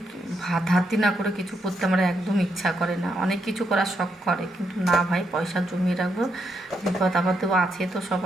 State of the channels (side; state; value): both; normal; correlation 0.79